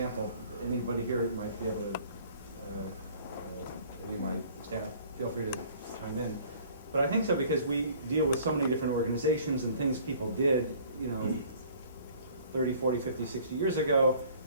Anybody here might be able to, any of my staff, feel free to chime in. But I think so because we deal with so many different organizations and things people did, 30, 40, 50, 60 years ago,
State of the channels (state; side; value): inverted; both; correlation -0.53